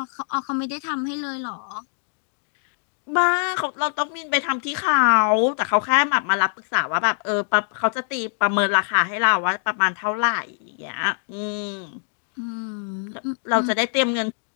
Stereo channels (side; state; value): right; silent; 63 dB below the other